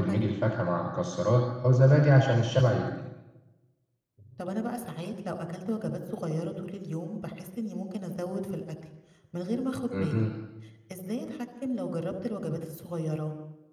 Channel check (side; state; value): both; identical; correlation 1.00